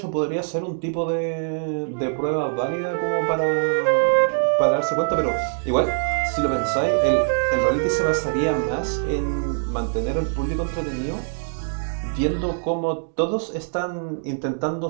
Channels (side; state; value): left; silent; digital silence